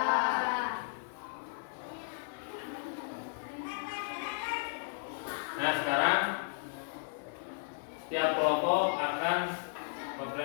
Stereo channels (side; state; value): right; silent; digital silence